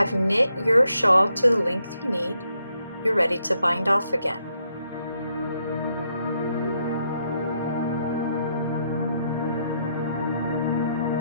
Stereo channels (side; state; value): both; inverted; correlation -0.77